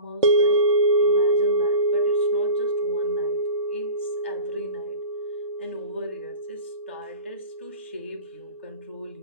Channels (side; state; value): both; inverted; correlation -0.36